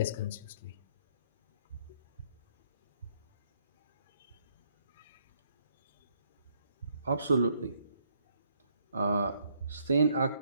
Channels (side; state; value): both; inverted; correlation -0.71